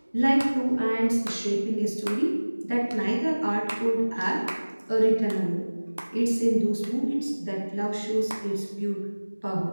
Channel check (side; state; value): both; inverted; correlation -1.00